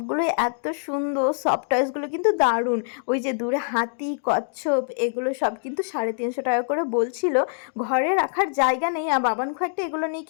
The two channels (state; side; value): silent; right; digital silence